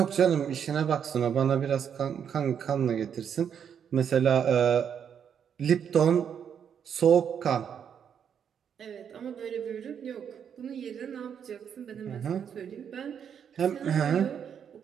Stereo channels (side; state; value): left; quieter; 8.0 dB